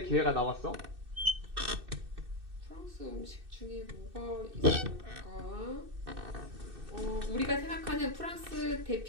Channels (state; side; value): late; left; 2.6 ms